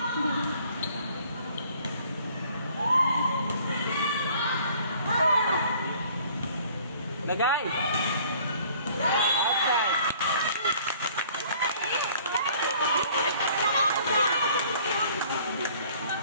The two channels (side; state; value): both; inverted; correlation -0.55